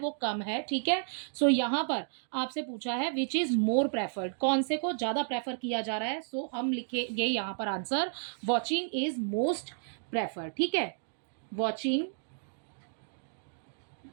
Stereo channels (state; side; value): silent; left; digital silence